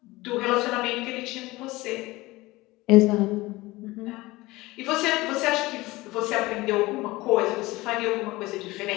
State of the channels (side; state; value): right; quieter; 20.2 dB